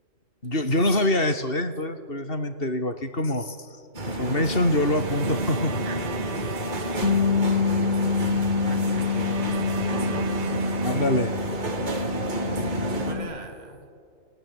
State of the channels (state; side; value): late; right; 2.7 ms